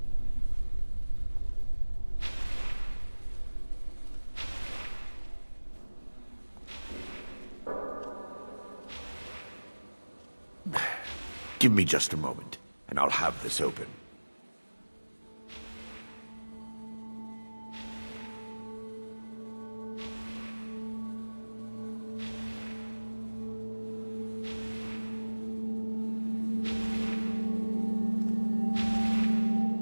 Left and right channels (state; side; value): inverted; both; correlation -1.00